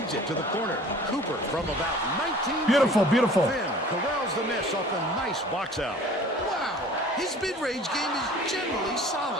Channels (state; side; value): normal; both; correlation 0.47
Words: it to the corner. Cooper from about 19. Beautiful, beautiful. Finn corrals the miss off a nice box out. Wow, his mid-range game is generally